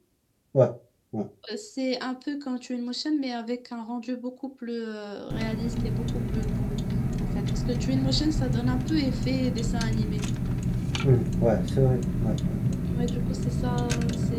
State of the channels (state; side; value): identical; both; correlation 1.00